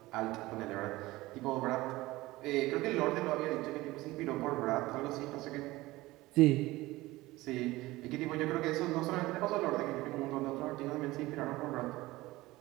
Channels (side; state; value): left; quieter; 19.0 dB